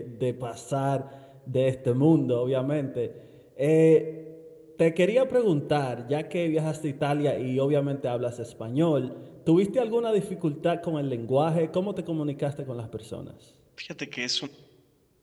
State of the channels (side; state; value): both; identical; correlation 1.00